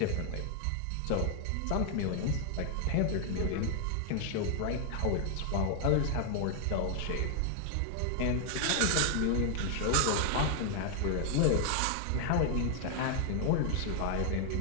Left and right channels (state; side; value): different; both; correlation 0.00